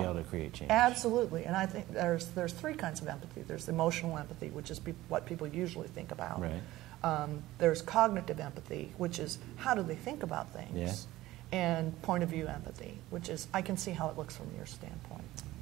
be able to create change. Absolutely, and I think there's 3 kinds of empathy. There's emotional empathy, which is what people usually think about. Right. There's cognitive empathy, which is how do they think about things. and point of view empathy, which is, I can see how it looks from your standpoint.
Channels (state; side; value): quieter; left; 16.7 dB